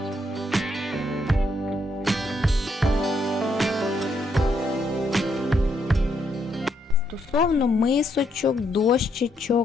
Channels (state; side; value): normal; both; correlation 0.76